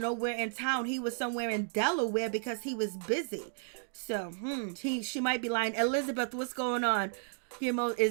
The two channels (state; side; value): silent; left; 56 dB below the other